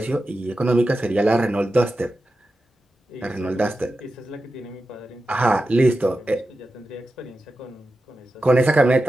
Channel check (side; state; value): both; normal; correlation 0.91